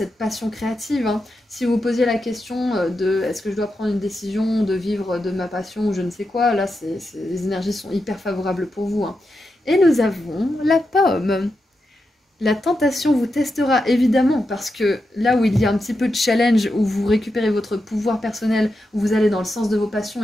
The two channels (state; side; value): normal; both; correlation 0.87